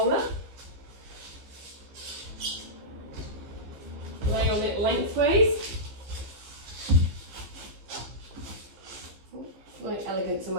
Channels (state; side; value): late; left; 15 ms